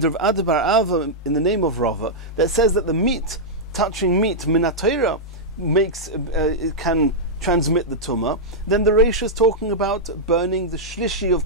Rav Ada bar Ava in the name of Rava, that says that the meat, touching meat min HaTorah, it can transmit the tumah. Then the Reish is talking about burning the shlishi of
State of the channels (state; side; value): normal; both; correlation -0.08